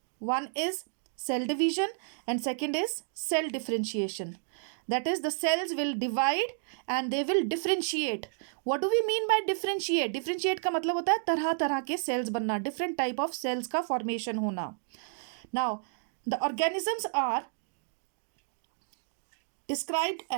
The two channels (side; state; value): left; silent; digital silence